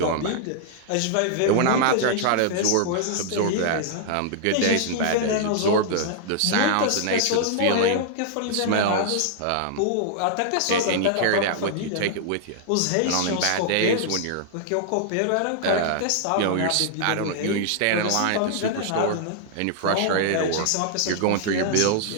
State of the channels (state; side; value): different; both; correlation -0.01